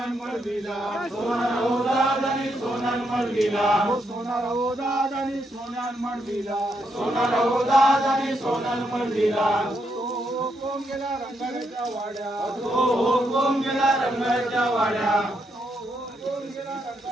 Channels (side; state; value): both; normal; correlation 0.79